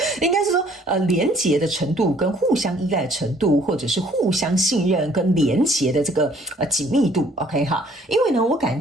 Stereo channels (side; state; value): both; normal; correlation 0.60